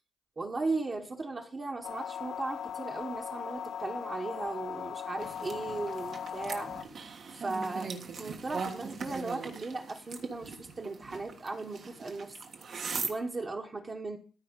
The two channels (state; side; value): normal; both; correlation 0.86